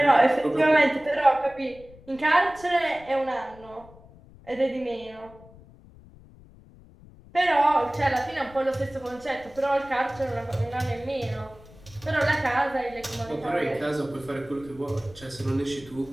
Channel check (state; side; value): noise; left; rumble, 22 dB below the sound